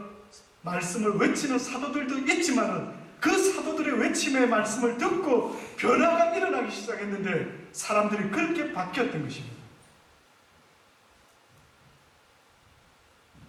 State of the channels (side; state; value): both; identical; correlation 1.00